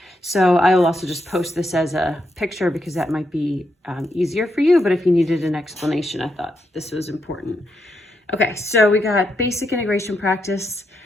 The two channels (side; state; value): both; normal; correlation 0.81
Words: So I will also just post this as a picture because that might be easier for you, but if you needed an explanation, I thought this was important. Okay, so we got basic integration practice.